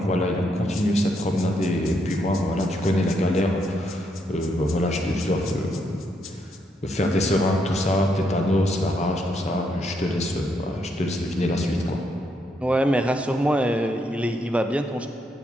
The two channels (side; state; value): both; normal; correlation 0.77